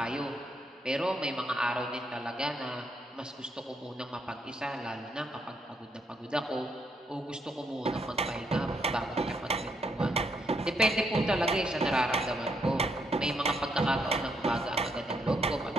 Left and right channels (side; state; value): both; normal; correlation 0.75